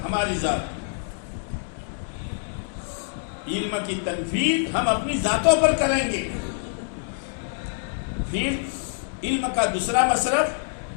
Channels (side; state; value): right; silent; 61 dB below the other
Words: ہماری ذات. علم کی تنفیذ ہم اپنی ذاتوں پر کریں گے. پھر علم کا دوسرا مصرف